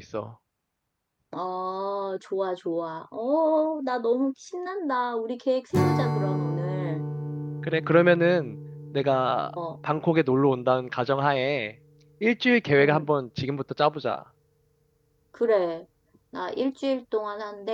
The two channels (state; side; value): identical; both; correlation 1.00